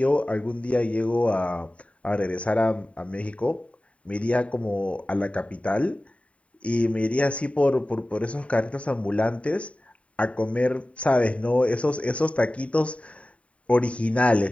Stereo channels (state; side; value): late; right; 0.064 ms